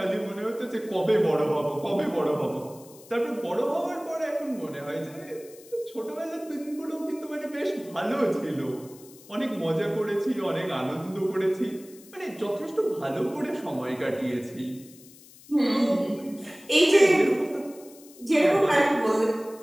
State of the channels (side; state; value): left; noise; hiss, 22 dB below the sound